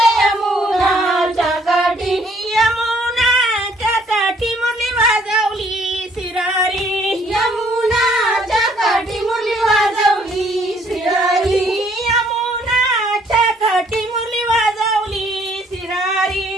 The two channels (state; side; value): normal; both; correlation 0.63